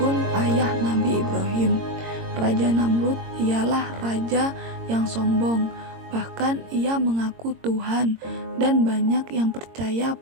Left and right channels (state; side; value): late; left; 22 ms